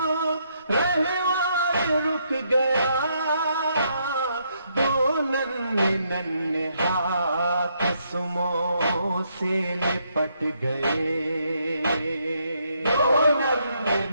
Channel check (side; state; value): both; inverted; correlation -0.75